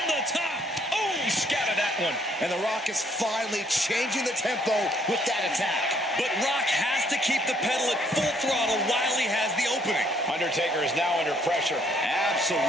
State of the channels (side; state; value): both; normal; correlation 0.65